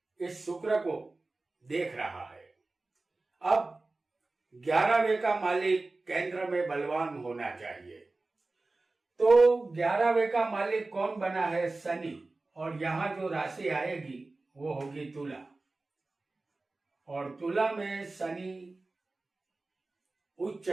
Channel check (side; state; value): left; quieter; 3.3 dB